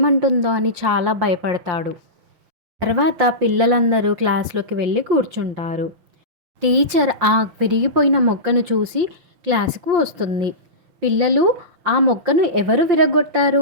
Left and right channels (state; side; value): late; left; 5.7 ms